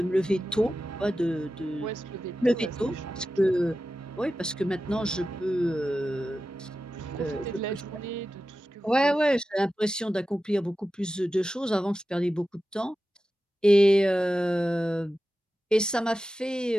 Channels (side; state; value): both; normal; correlation 0.93